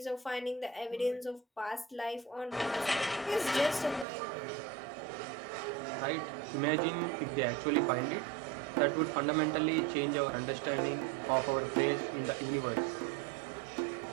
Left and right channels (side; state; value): left; drops out; at 4.0 s